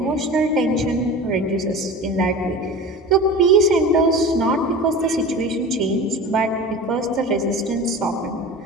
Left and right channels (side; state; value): both; normal; correlation 0.34